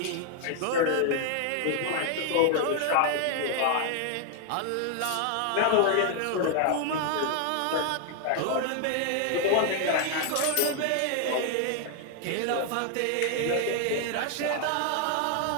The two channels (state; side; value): different; both; correlation 0.00